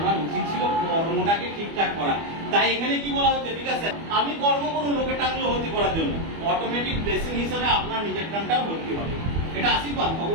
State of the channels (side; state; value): left; late; 25 ms